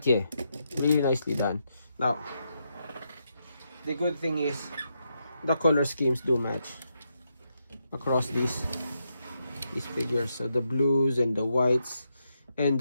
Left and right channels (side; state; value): both; inverted; correlation -0.82